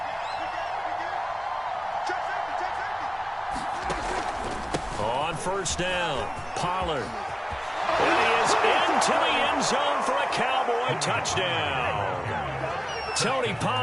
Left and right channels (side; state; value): both; identical; correlation 1.00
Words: On first down, Pollard. And he is into the end zone for a Cowboy touchdown. Tony